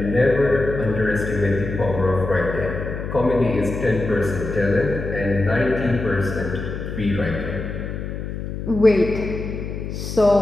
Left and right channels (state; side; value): noise; left; hum, 6 dB below the sound